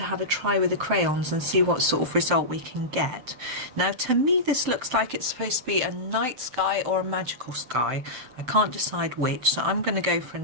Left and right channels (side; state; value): left; late; 7.7 ms